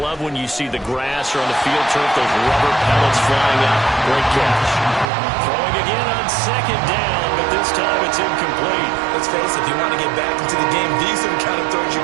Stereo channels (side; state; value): left; drops out; at 5.1 s